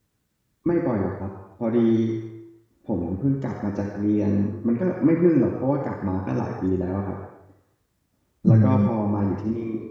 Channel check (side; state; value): both; identical; correlation 1.00